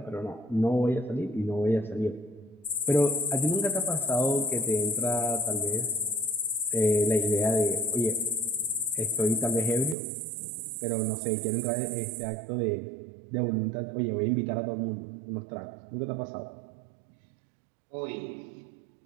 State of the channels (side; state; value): left; drops out; at 10.0 s